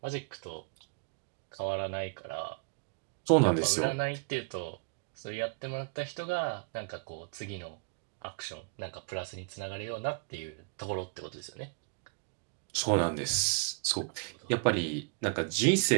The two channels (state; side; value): quieter; left; 36.0 dB